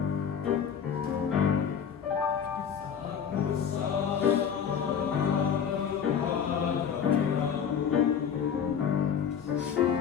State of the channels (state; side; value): quieter; right; 7.7 dB